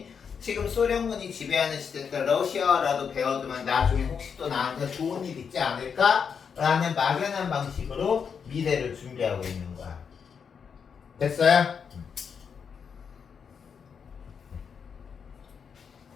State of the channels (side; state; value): right; quieter; 6.6 dB